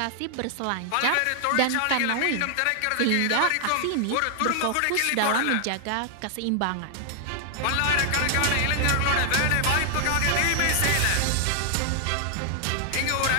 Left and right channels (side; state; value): both; different; correlation 0.00